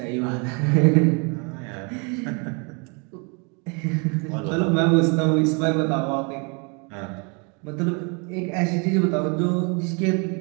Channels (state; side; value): quieter; left; 33.5 dB